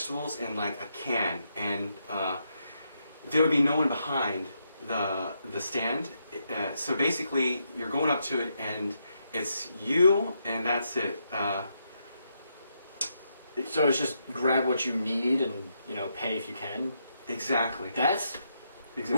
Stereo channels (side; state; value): both; inverted; correlation -0.80